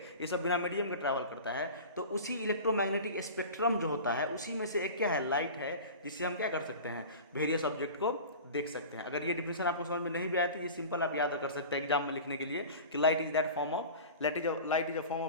ये सब बिना मीडियम के ट्रैवल करता है। तो उसी इलेक्ट्रोमैग्नेटिक स्पेक्ट्रम जो होता है, उसी में से एक क्या है, लाइट है, जिससे हम क्या कर सकते हैं, वेरियस ऑब्जेक्ट को देख सकते हैं। अगर ये डिफिनेशन आपको समझ में नहीं भी आया तो ये सिंपल आप याद कर सकते हैं एग्जाम में लिखने के लिए कि light is that form of light is a form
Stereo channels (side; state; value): both; inverted; correlation -0.35